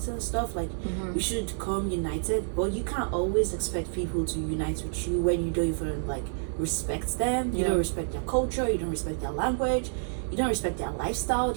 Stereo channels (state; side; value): silent; left; 59 dB below the other